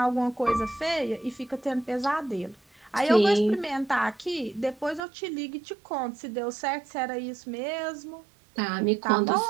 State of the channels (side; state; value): left; drops out; at 5.0 s